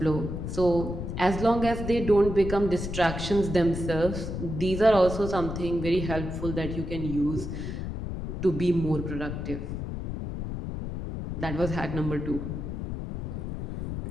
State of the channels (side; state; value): left; noise; rumble, 5 dB below the sound